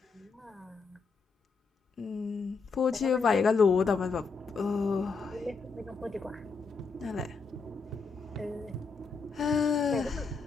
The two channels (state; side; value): quieter; right; 4.7 dB